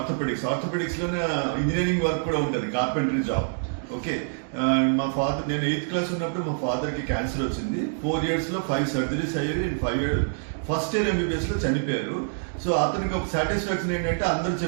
ఇంజనీరింగ్ వర్క్ కూడా ఉంటుంది, కార్పెంటరీ జాబ్. ఓకే, మా ఫాదర్, నేను 8th క్లాస్ ఉన్నప్పుడు మా ఫాదర్కి క్యాన్సర్ వచ్చింది. 4 yearsలో 5 surgeries అయ్యేవి. 5 years ఫస్ట్ ఇయర్ ఎంబీబీఎస్లో చనిపోయారు. సో అతనికి ఒక సాటిస్ఫాక్షన్ ఏంటంటే అందరూ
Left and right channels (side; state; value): left; silent; digital silence